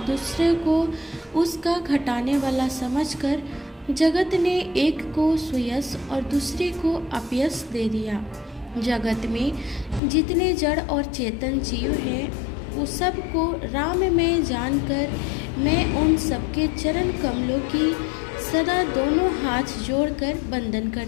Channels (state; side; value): drops out; right; at 10.0 s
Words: दूसरे को उसका घटाने वाला समझकर जगत ने एक को सुयश और दूसरे को अपयश दे दिया। जगत में जितने जड़ और चेतन जीव हैं, उस सब को राम में जानकर मैं उन सबके चरण कमलों की सदा दोनों हाथ जोड़कर वंदन